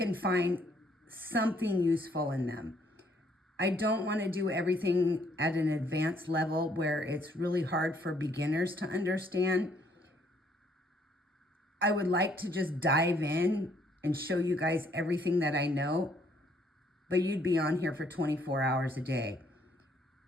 find something useful in them. I don't want to do everything at an advanced level where it's really hard for beginners to understand. I would like to just dive in and show you guys everything that I know, but you'd be on here for 24 hours a day.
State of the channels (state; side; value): normal; both; correlation 0.66